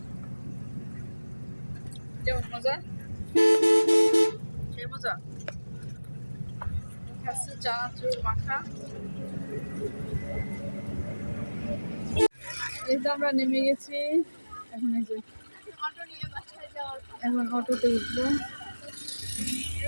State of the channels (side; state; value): both; inverted; correlation -1.00